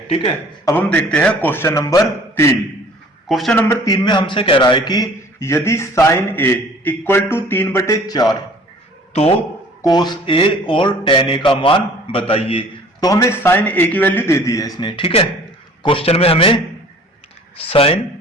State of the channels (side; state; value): both; normal; correlation 0.51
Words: ठीक है। अब हम देखते हैं क्वेश्चन नंबर 3। क्वेश्चन नंबर 3 में हमसे कह रहा है कि यदि साइन ए इक्वल टू 3/4 तो कोस ए और टेन ए का मान बताइए। तो हमें साइन ए की वैल्यू दे दी है इसने, ठीक है। क्वेश्चन में हमें साइन